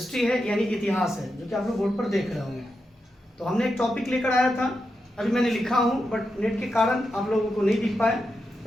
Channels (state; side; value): normal; both; correlation 0.87